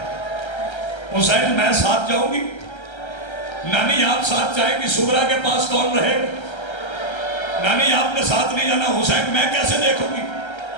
حسین میں ساتھ جاؤں گی؟ نانی آپ ساتھ جائیں گی؟ سغرا کے پاس کون رہے گا؟ نانی آپ نے ساتھ نہیں جانا. حسین میں کیسے دیکھوں گی؟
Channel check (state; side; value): late; right; 1.3 ms